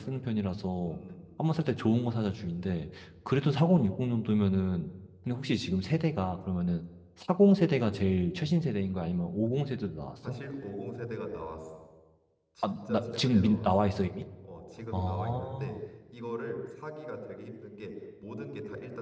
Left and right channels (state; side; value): identical; both; correlation 1.00